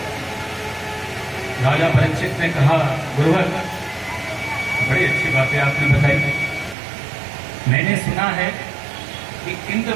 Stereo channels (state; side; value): drops out; left; at 6.8 s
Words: राजा परीक्षित ने कहा, गुरुवर बड़ी अच्छी बातें आपने बताई। मैंने सुना है कि इंद्र